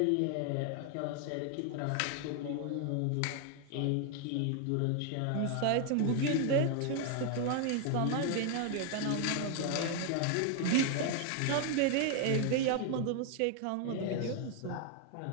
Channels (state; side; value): different; both; correlation 0.00